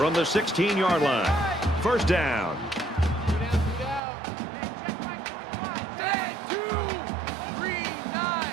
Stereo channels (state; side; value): drops out; left; at 4.0 s